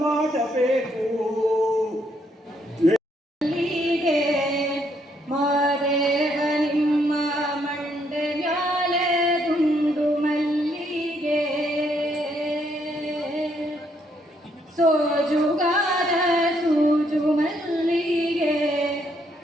ಮಾಡಬೇಕು ಮಾದೇವ ನಿಮ್ಮ ಮಂಡೆ ಮ್ಯಾಲೆ ಗುಂಡು ಮಲ್ಲಿಗೆ ಸೋಜುಗಾರ ಸೂಜು ಮಲ್ಲಿಗೆ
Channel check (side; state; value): both; normal; correlation 0.72